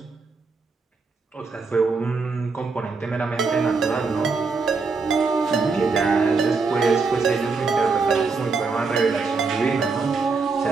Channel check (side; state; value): left; quieter; 4.4 dB